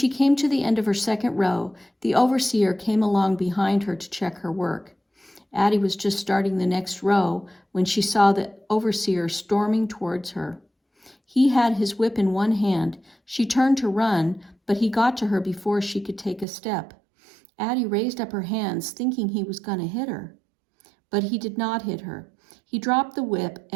came to the end of her second row, the overseer came along behind her to check her work. Addie was just starting the next row when she saw the overseer storming towards her. He had his whip in one hand. She turned to run, but he got to her before she could take a step. Addie raised up her hands, thinking he was going to hit her. But he did not hit her. He dropped the whip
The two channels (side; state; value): left; drops out; at 16.4 s